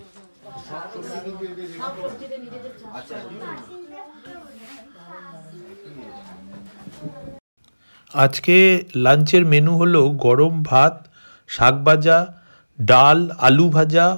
আজকে লাঞ্চের মেনু হলো গরম ভাত, শাক ভাজা, ডাল, আলু ভাজা,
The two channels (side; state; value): both; inverted; correlation -1.00